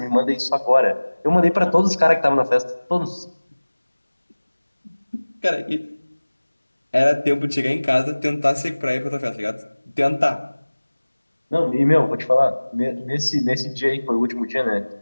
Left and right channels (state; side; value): inverted; both; correlation -1.00